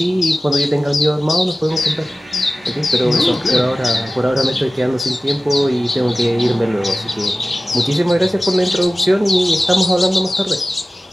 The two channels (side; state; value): both; normal; correlation 0.96